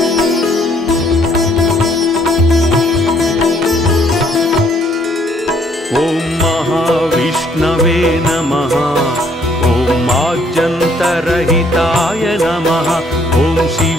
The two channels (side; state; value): both; normal; correlation 0.65